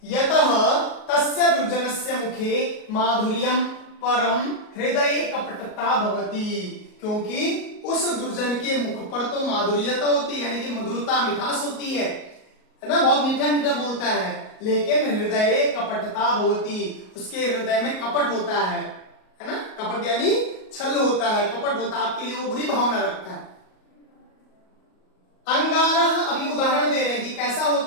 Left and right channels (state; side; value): late; right; 38 ms